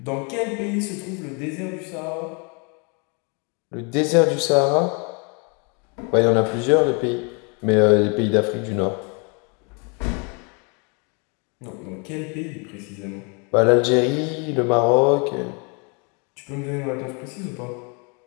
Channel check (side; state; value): right; quieter; 33.7 dB